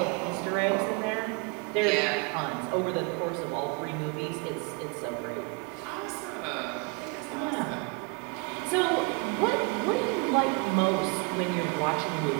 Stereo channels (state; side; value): quieter; left; 31.4 dB